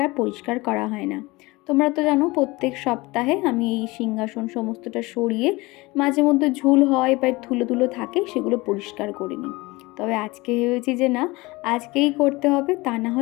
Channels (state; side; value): quieter; right; 22.4 dB